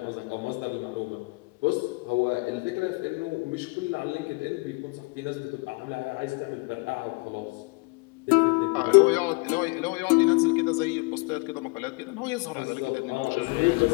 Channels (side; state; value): right; quieter; 27.3 dB